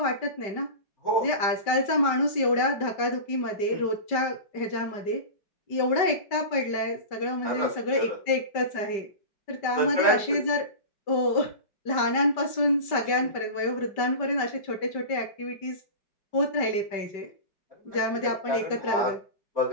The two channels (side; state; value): right; late; 5.1 ms